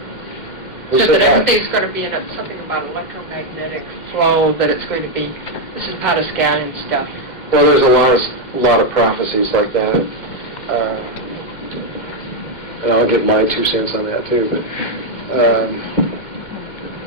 Who Said said that that? everything's going to be in something about electromagnetic flow, that it's going to be, this is Pascalian stuff. Well, there's a lot of prophecies like that. And I'll give my 2 cents on that too, but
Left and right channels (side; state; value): right; late; 2.1 ms